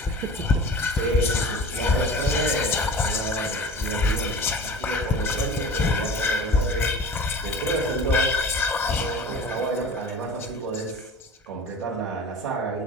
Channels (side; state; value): both; normal; correlation 0.38